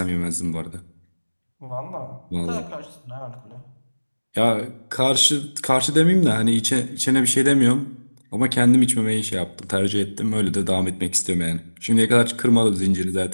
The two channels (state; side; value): inverted; both; correlation -1.00